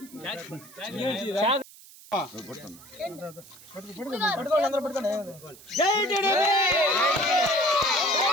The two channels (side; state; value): right; noise; hiss, 21 dB below the sound